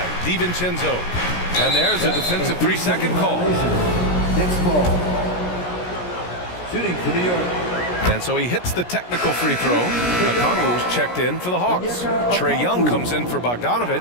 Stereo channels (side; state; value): right; late; 17 ms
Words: DiVincenzo. And there's a defensive 3-second call. Next ball. Shooting for New York. And so he hits the technical free throw. Okongwu's checked in for the Hawks. Trae Young comes in for